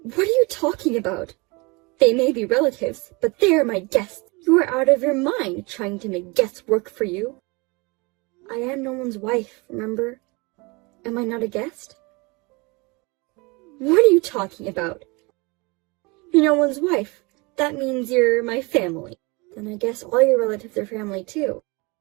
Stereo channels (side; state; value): left; quieter; 27.0 dB